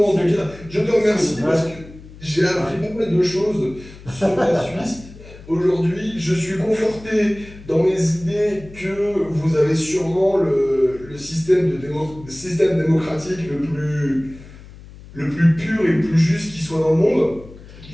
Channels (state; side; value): noise; left; hum, 18 dB below the sound